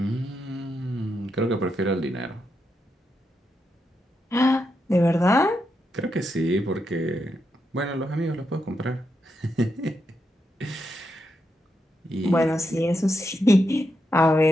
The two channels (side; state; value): both; normal; correlation 0.84